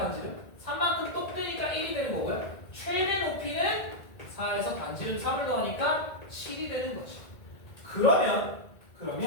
3만큼 똑 되니까 1이 되는 거고요. 최대 높이는 4에서 반지름 3을 더하니까 7이 되는 거죠. 그러면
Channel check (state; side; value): late; right; 1.8 ms